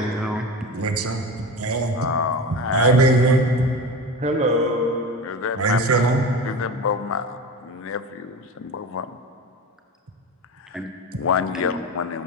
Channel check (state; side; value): normal; both; correlation 0.28